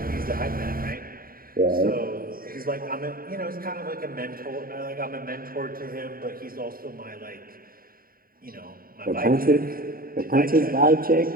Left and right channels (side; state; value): left; late; 0.42 ms